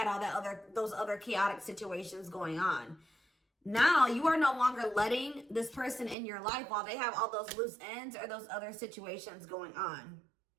all that those other chaotic situations going on. Now you are no longer letting this person in your life while they have all those loose ends or those other situations going on.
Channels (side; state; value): left; drops out; at 6.2 s